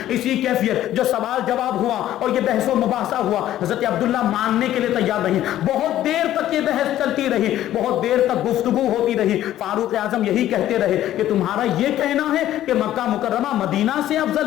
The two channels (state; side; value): quieter; right; 12.9 dB